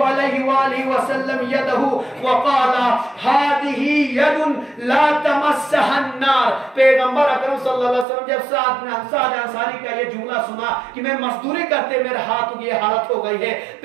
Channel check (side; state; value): left; drops out; at 8.1 s